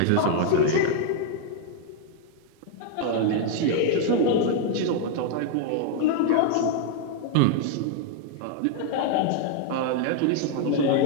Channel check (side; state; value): both; different; correlation 0.00